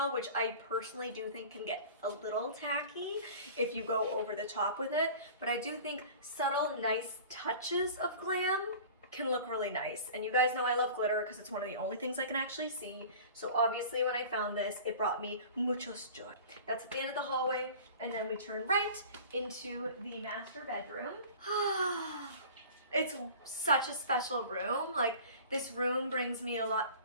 which I personally do think can get a little tacky if you go over the top with it. But I do think subtle, nice touches of glam can look really nice. And you guys know I love glitter because it's one of the only things I can actually see. So obviously when I found this, it brought me muchos joy. That's at the end of the hallway, and then we turn right into the master bedroom. It's such a special room. Like, this room brings me a lot.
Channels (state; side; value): inverted; both; correlation -0.41